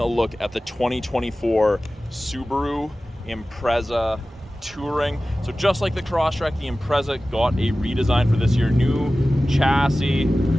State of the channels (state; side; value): normal; both; correlation 0.96